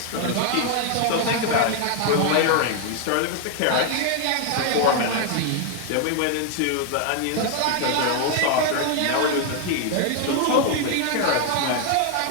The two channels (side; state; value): both; different; correlation 0.00